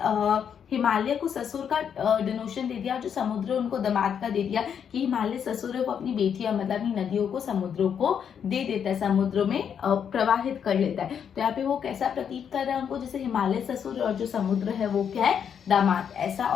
हिमालय को ससुर का डिनोशन दे दिया, और जो समुद्र उनको दामाद का दे दिया कि हिमालय ससुर है, वो अपनी बेटियां मतलब अपनी नदियों को समुद्रों को दे देता है, समुद्र में प्रवाहित कर लेता है। तो यहाँ पे वो कैसा प्रतीत कर रहा है उनको, जैसे हिमालय ससुर और जो समुद्र है वो क्या है, दामाद ऐसा,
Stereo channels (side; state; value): right; quieter; 7.9 dB